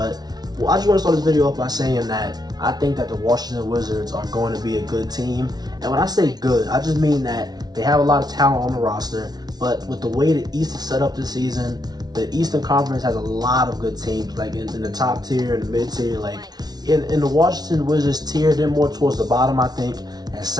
I just want to start this video off by saying that I think that the Washington Wizards are going to be a good team. And when I say good, I just mean that they have a lot of talent on the roster. But with the way the East is set up this season, the Eastern Conference has a lot of good teams, like in the top tier and the mid tier. Like in the Washington Wizards tier, they're more towards the bottom, I think. And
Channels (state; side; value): late; left; 0.19 ms